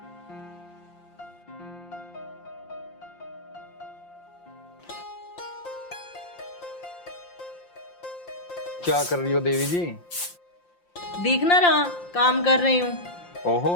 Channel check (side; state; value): right; late; 5.7 ms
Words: क्या कर रही हो देवी जी? दिख ना रहा, काम कर रही हूँ। ओहो,